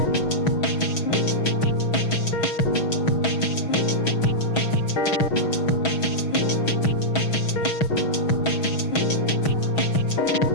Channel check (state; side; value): late; right; 6.2 ms